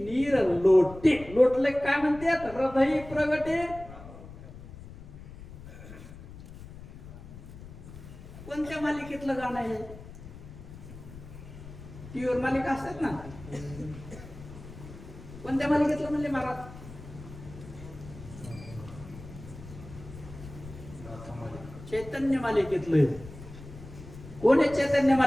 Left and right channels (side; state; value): left; noise; rumble, 15 dB below the sound